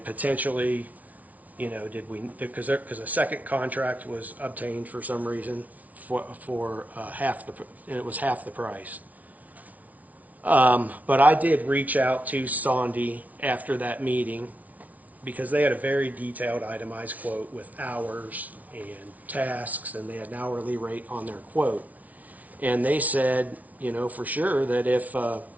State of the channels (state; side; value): late; left; 0.072 ms